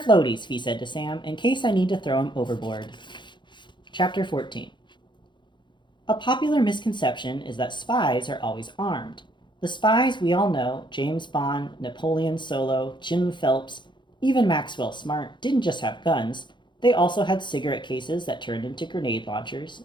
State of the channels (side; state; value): right; late; 0.23 ms